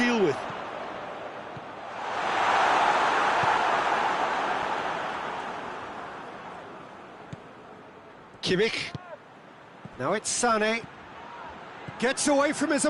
with. Kimmich. Now it's Sané. Gets away from his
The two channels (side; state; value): both; identical; correlation 1.00